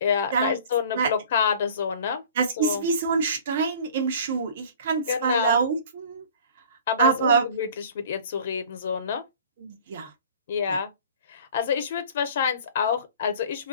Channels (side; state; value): both; inverted; correlation -0.46